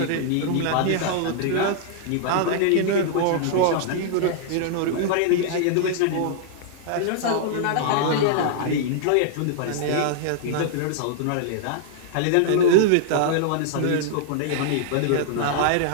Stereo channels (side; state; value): both; different; correlation -0.01